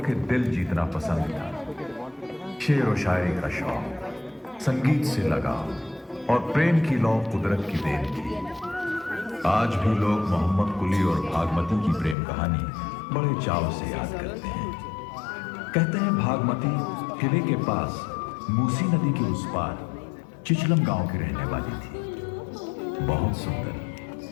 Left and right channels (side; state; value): right; drops out; at 12.2 s